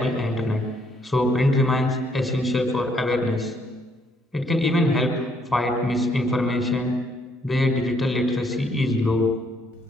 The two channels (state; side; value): normal; both; correlation 0.69